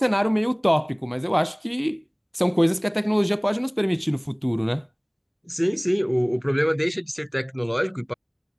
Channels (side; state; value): both; identical; correlation 1.00